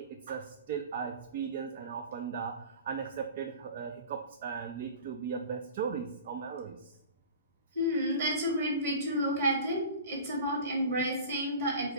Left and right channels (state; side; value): inverted; both; correlation -0.38